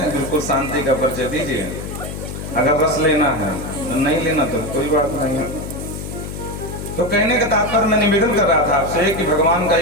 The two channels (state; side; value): noise; left; hum, 8 dB below the sound